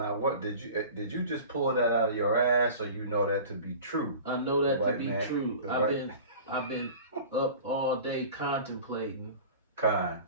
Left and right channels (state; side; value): inverted; both; correlation -0.39